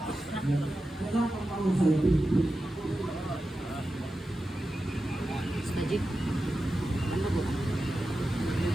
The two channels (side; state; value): both; normal; correlation 0.92